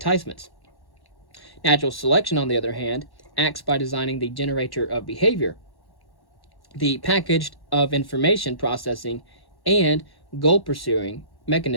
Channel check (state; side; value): late; right; 1.1 ms